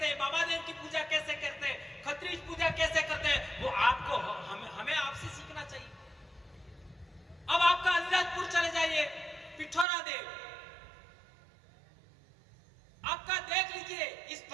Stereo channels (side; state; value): left; drops out; at 9.9 s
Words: हैं, बाबा देव की पूजा कैसे करते हैं, खत्रीज पूजा कैसे करते हैं, वो आपको हमें आपसे सीखना चाहिए। अब आपका अलीराजपुर चले जाइए, पिठोरा देव आपका देख लीजिए, इस